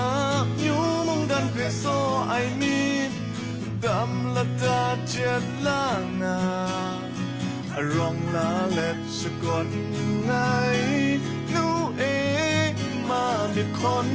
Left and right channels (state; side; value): identical; both; correlation 1.00